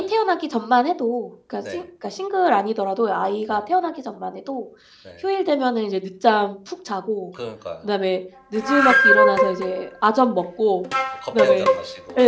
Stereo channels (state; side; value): identical; both; correlation 1.00